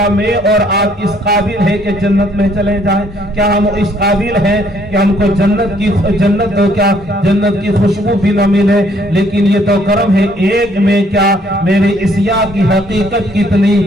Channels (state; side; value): normal; both; correlation 0.65